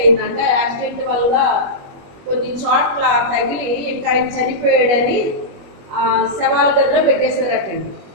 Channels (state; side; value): late; left; 21 ms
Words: యాక్సిడెంట్ వల్ల కొన్ని చోట్ల తగిలి ఇంకా ఆయన చనిపోయాడని శవాల గదిలో పెట్టేశారటండి.